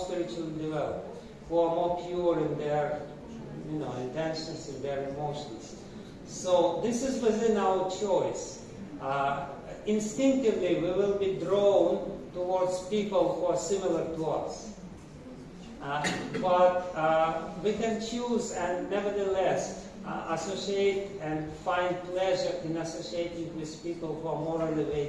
developed, who are more pure in their intentions, in their emotions. So this is within our choice. Instinctively, we will be drawn towards people who are similar to us. But we can choose and nevertheless associate and find pleasure in associating with people who are more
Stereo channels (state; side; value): identical; both; correlation 1.00